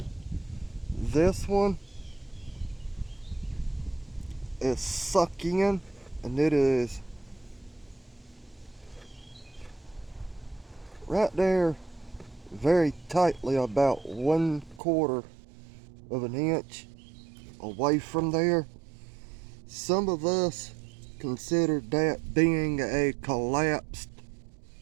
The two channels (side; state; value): left; drops out; at 14.8 s